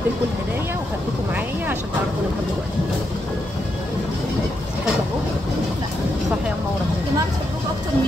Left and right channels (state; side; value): normal; both; correlation 0.82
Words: لكم الهدايا وخدتكم معايا عشان تعرفوا ان انا بحبكم. صح يا منوره. يا جماعه بتحبوكوا اكتر